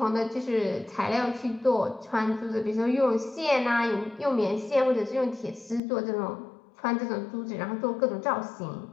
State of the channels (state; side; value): drops out; right; at 5.8 s